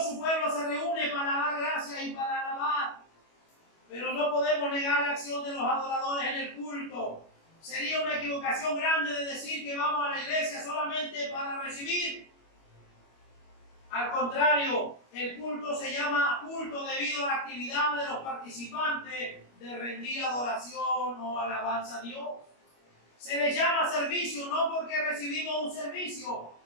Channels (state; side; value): late; right; 25 ms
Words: su pueblo se reúne para dar gracias y para alabar. Pero no podemos negar la acción de los adoradores en el culto. Sería una equivocación grande de decir que vamos a la iglesia solamente para recibir. Al contrario, el culto se llama culto debido a la actividad de los participantes de rendir adoración o alabanza a Dios. Se le llama servicio no porque recibimos un servicio,